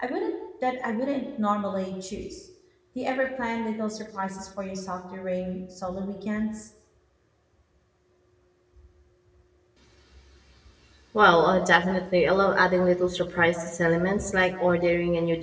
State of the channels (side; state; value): both; identical; correlation 1.00